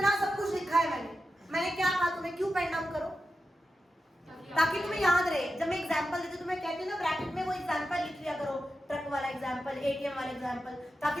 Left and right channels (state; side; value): normal; both; correlation 0.90